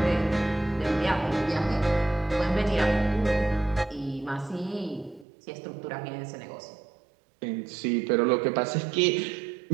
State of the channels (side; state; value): left; drops out; at 5.2 s